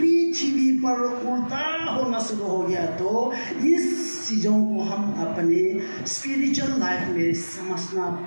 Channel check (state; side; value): inverted; both; correlation -1.00